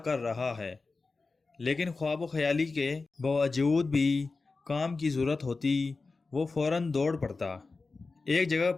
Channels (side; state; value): right; quieter; 3.9 dB